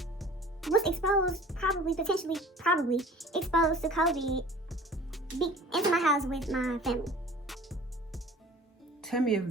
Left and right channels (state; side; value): normal; both; correlation 0.45